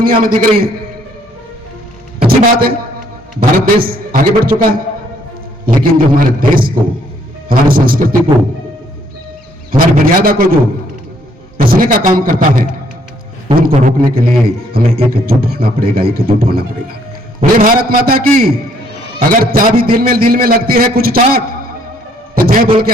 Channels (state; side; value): normal; both; correlation 0.66